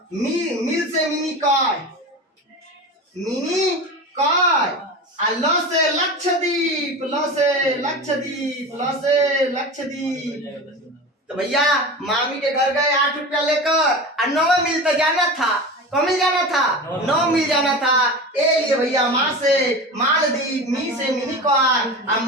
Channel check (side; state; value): both; normal; correlation 0.29